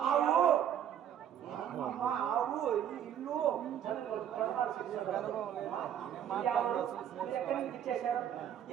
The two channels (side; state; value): left; quieter; 9.8 dB